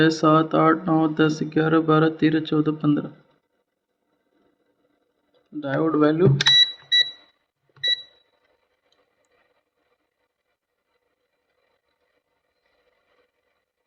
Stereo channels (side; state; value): both; identical; correlation 1.00